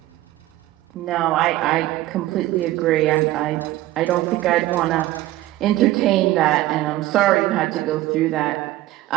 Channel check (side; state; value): left; quieter; 15.9 dB